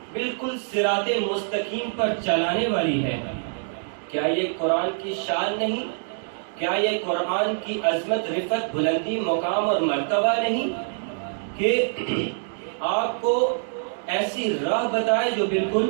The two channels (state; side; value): silent; left; digital silence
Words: بالکل صراط مستقیم پر چلانے والی ہے۔ کیا یہ قرآن کی شان نہیں؟ کیا یہ قرآن کی عظمت، رفعت، بلندی، مقام اور مرتبہ نہیں کہ آپ کو ایسی راہ بتائے جو بالکل